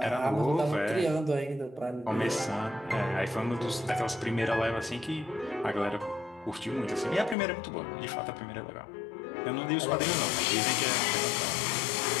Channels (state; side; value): drops out; right; at 7.4 s